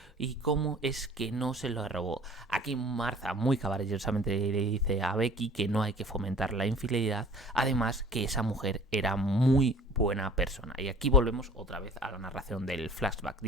y cómo es que no se lo robó. Aquí Martha muy caballerosamente le dice a Becky que no hay que fomentar la infidelidad, además que esa mujer era muy buena persona. Y aquí volvemos otra vez a la narración del flashback,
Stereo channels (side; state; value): both; normal; correlation 0.49